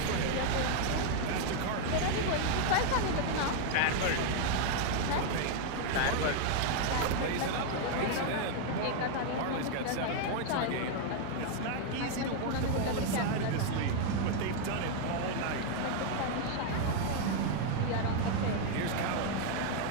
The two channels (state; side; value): different; both; correlation 0.00